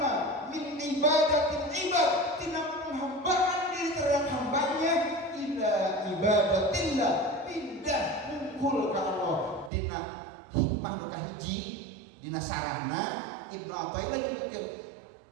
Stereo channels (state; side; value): drops out; left; at 9.7 s